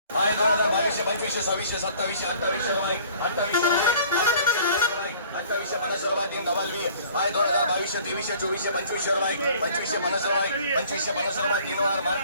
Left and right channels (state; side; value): inverted; both; correlation -0.51